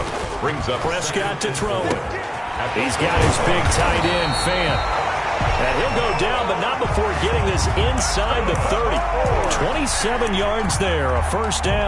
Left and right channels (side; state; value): both; identical; correlation 1.00